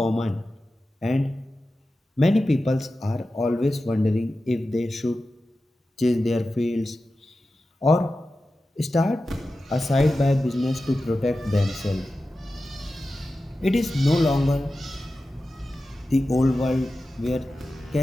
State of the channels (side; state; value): both; normal; correlation 0.93